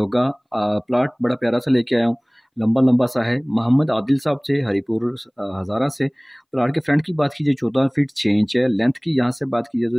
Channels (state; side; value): identical; both; correlation 1.00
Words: प्लाट बड़ा प्यारा सा लेके आया हूँ। लंबा लंबा सा है। मोहम्मद आदिल साहब से हरीपुर हज़ारा से। प्लाट के फ्रंट की बात कीजिए 14 फीट 6 इंच है। लेंथ की यहाँ से बात कीजिए